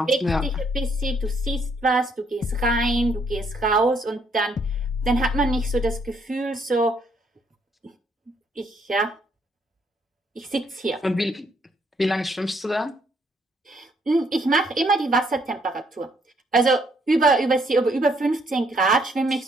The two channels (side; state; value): both; normal; correlation 0.70